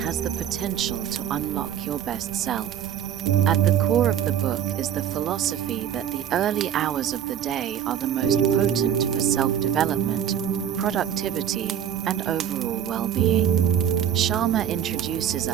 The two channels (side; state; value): left; quieter; 9.6 dB